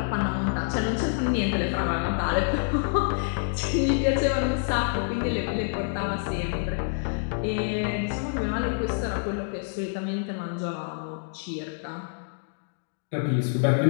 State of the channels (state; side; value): silent; right; 60 dB below the other